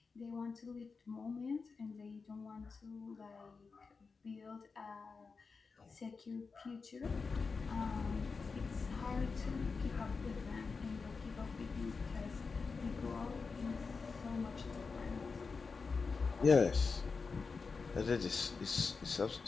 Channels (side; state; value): right; quieter; 4.7 dB